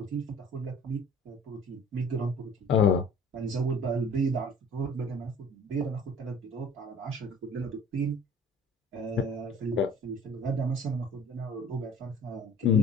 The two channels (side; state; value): both; normal; correlation 0.48